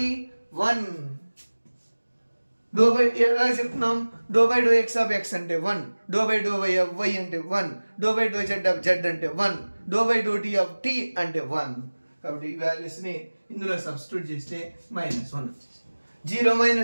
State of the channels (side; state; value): both; inverted; correlation -1.00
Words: y? 1. Do by ఎలా చెప్తున్నాం? Doh by do X of x అంటే 1, do by do why of y అంటే 1, do by doh z of z అంటే 1, do by doh t of t అంటే 1. కాబట్టి ఈ వాల్యూస్ని ఇందులో సబ్స్టిట్యూట్ చేస్తే -1 0